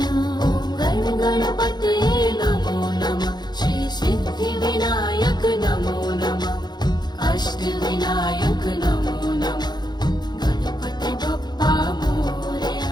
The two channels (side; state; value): right; late; 0.21 ms